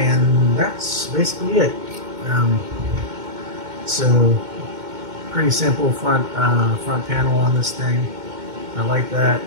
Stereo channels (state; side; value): late; left; 2.1 ms